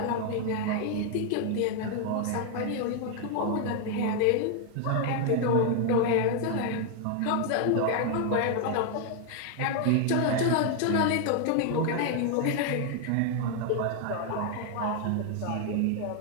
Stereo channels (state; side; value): different; both; correlation 0.00